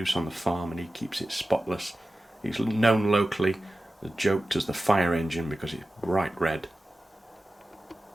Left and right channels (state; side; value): normal; both; correlation 0.94